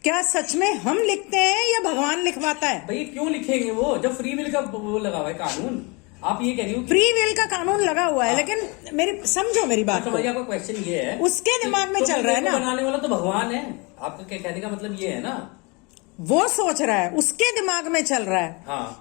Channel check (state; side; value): quieter; right; 28.8 dB